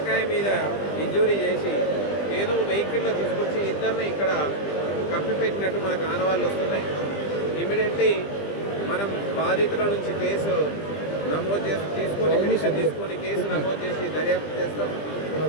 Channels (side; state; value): right; late; 20 ms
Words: మీద ఇంజూరీ చేసి ఏదో వెహికల్లో తీసుకొచ్చి ఇద్దరిని ఇక్కడ కప్పిపెట్టినట్టు మనకు ఆనవాళ్ళు వస్తున్నాయి. ఇమీడియట్లీ మనం బాధితుల నుంచి కేసు నమోదు చేసి పిటిషన్ తీసుకొని కేసు నమోదు చేసి దర్యాప్తు చేస్తాం.